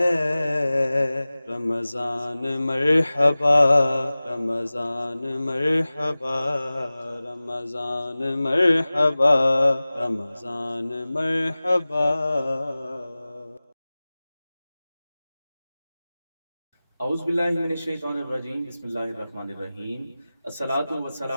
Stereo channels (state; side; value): inverted; both; correlation -0.98